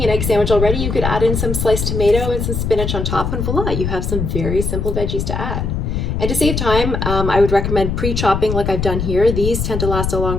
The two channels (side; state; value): left; noise; rumble, 2 dB below the sound